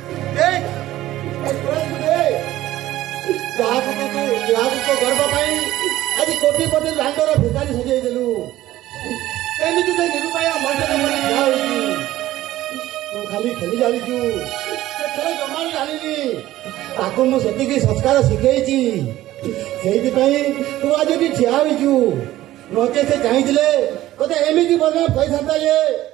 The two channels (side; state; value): left; quieter; 15.0 dB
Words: ଯାହାକୁ ତୋ ଗର୍ବ ପାଇଁ ଆଜି କୋଟିପତି ଲାଣ୍ଡର ଭିକାରୀ ସଜେଇ ଦେଲୁ। ଏମିତି ସେ ନିରୁପାୟ ମଣିଷର ମନେ ଠିଆ ହୋଇଛି। ତୁ ଖାଲି ଖେଳି ଜାଣିଛୁ, ସେ ଖେଳ ଜମା ବି ଜାଣିନି। ତାକୁ ମୁଁ ସେତିକି ସଂସ୍କାର ଶିଖେଇଛି। ସେଇଥିପାଇଁ ତୁ ଆଜି ଏଠି ଠିଆ ହୋଇଛୁ। ନଚେ ସେ ଚାହିଁଥିଲେ ତୋତେ ଏମିତି ବଦନାମ କହିଥାନ୍ତା ଯେ